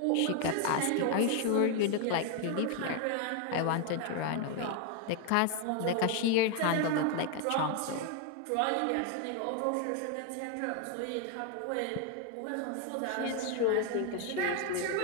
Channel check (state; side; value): different; both; correlation 0.01